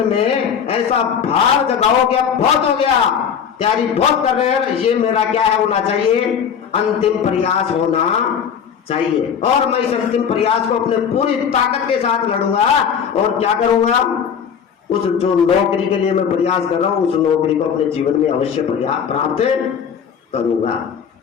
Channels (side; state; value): right; quieter; 7.5 dB